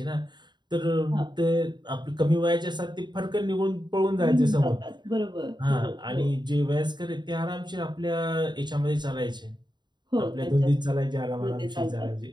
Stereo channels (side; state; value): left; late; 0.21 ms